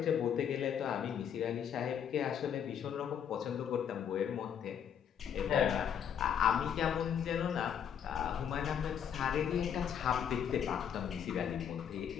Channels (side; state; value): right; quieter; 8.5 dB